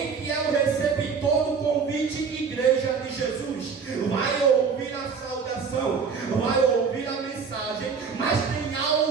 que é o receptor do convite, igreja de Jesus, vai ouvir a saudação, vai ouvir a mensagem, mas tem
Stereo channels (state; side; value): quieter; left; 5.7 dB